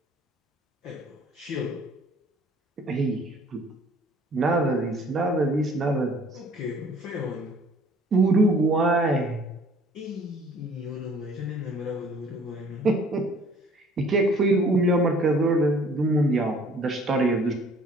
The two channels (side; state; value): both; normal; correlation 0.54